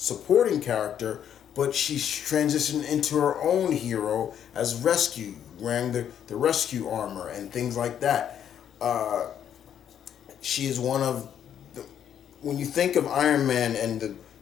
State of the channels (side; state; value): right; quieter; 9.4 dB